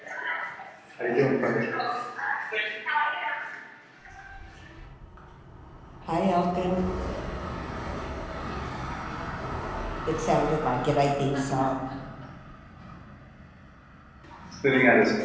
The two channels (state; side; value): identical; both; correlation 1.00